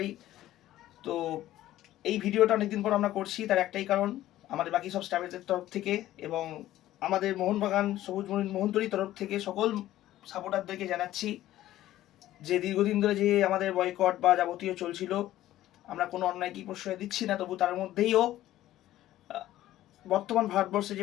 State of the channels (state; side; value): quieter; right; 14.2 dB